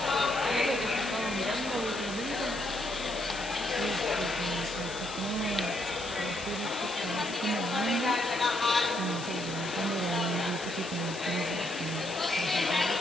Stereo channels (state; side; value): noise; left; hiss, 12 dB below the sound